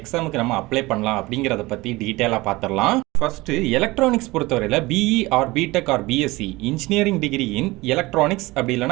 நம்ம அப்ளை பண்ணலாம் அப்படிங்கிறத பற்றி டீட்டெயிலாக பார்த்துடலாம். ஃபர்ஸ்ட் எலக்ட்ரானிக்ஸ் பொறுத்தவரையில் BE or BTech or BSc engineering degree in electronics, அப்படி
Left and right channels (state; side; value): quieter; left; 20.9 dB